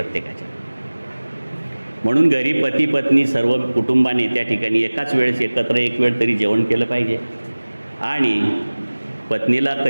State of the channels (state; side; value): inverted; both; correlation -1.00